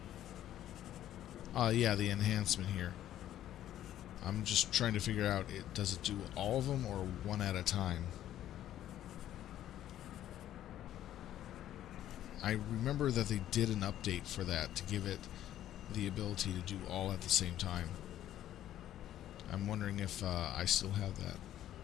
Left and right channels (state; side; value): quieter; right; 12.1 dB